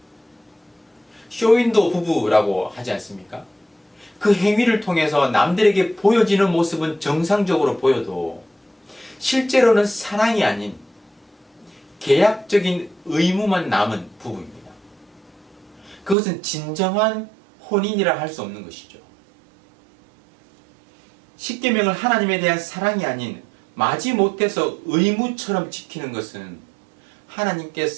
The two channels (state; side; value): drops out; left; at 16.2 s